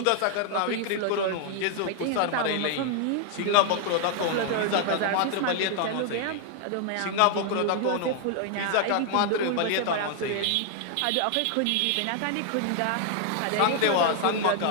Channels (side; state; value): both; different; correlation 0.00